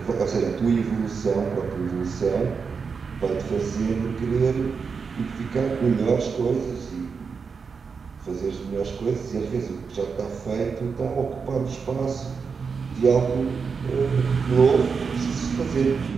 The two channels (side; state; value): left; quieter; 5.5 dB